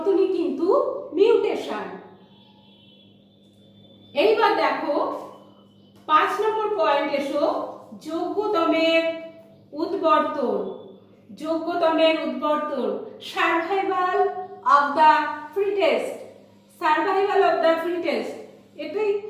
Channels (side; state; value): both; identical; correlation 1.00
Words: কিন্তু মিউটেশন। এইবার দেখো 5 নম্বর পয়েন্ট এসো, যোগ্যতমের উদ্বর্তন। যোগ্যতমের উদ্বর্তন, survival of the fittest. Survival of the fittest, এটাই